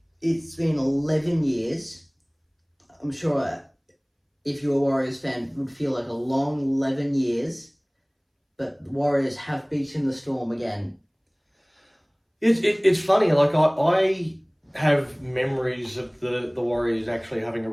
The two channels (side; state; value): both; identical; correlation 1.00